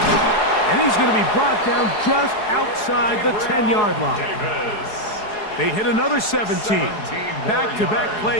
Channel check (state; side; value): late; right; 4.7 ms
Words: And he's going to be brought down just outside the 10-yard line. They hit another 17. Back-to-back